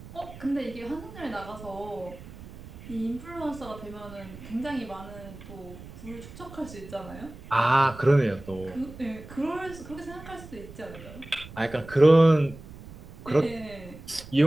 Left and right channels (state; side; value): noise; right; rumble, 16 dB below the sound